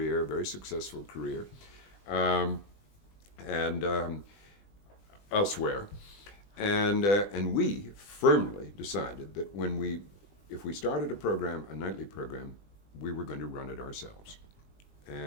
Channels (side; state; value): right; late; 20 ms